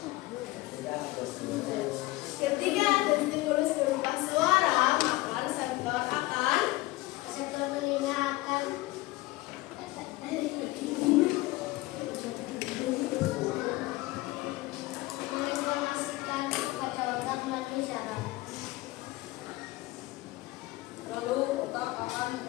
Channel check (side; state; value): right; quieter; 19.9 dB